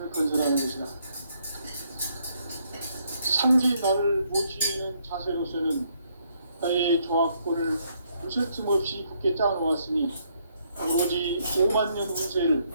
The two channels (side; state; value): both; inverted; correlation -0.72